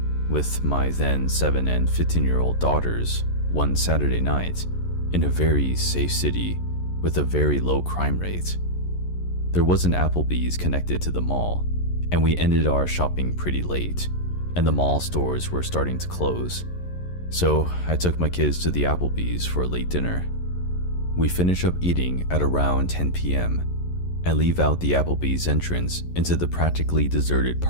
with my then 7 and 15-year-old daughters one Saturday night in a very safe city with a very low crime rate. There was an Applebee's connected to the mall, and we ended our shopping pretty late, and the mall stores were starting to close. So I took my kids to the Applebee's for a late dinner. We finish up eating at around 10 p.m. and leave out the Applebee's entrance into the practically deserted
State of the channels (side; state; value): right; late; 11 ms